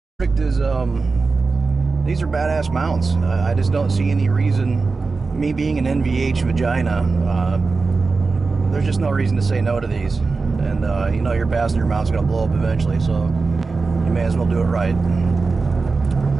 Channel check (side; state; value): left; quieter; 4.2 dB